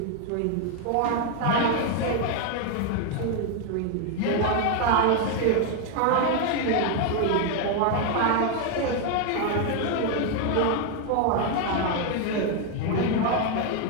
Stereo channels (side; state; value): both; different; correlation 0.01